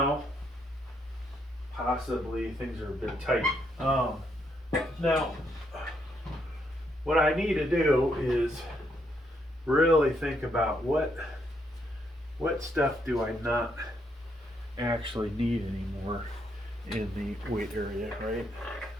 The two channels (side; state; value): both; normal; correlation 0.75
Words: possibly things are a bit tight. Now, what I need to do is really think about what stuff do I not actually need anymore in the weight area, right?